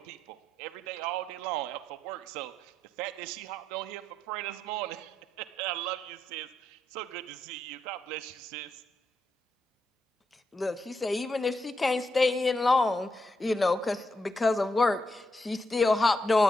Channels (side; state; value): both; normal; correlation 0.82